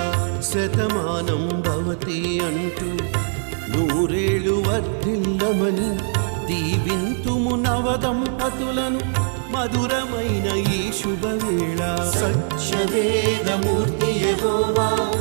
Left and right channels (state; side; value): silent; left; digital silence